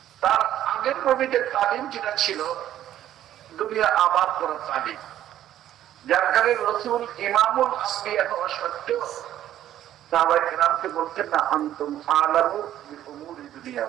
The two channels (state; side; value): quieter; left; 12.0 dB